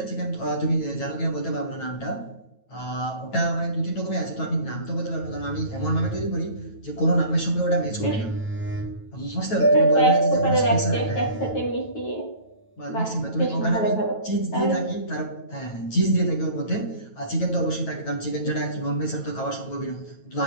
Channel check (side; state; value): right; late; 9.1 ms